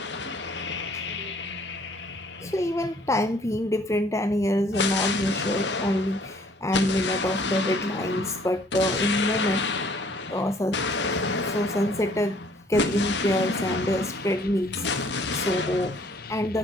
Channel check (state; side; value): normal; both; correlation 0.59